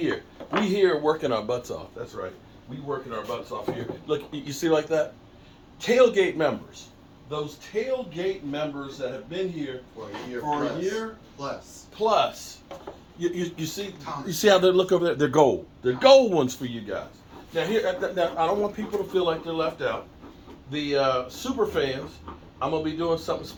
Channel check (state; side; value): identical; both; correlation 1.00